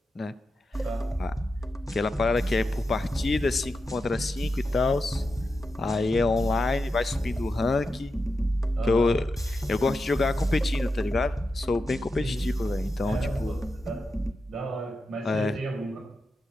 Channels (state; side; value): normal; both; correlation 0.89